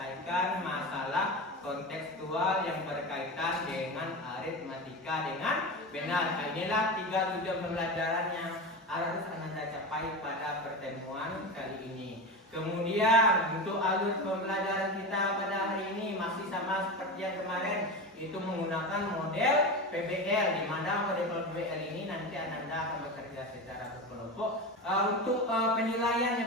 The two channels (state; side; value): normal; both; correlation 0.23